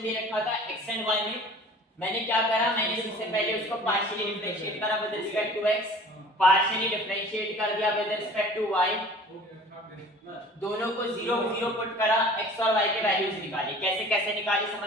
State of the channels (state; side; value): normal; both; correlation 0.46